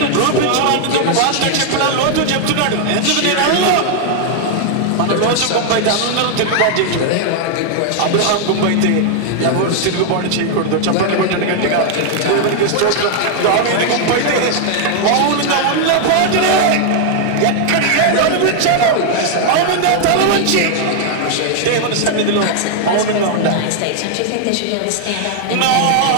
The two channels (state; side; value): different; both; correlation 0.00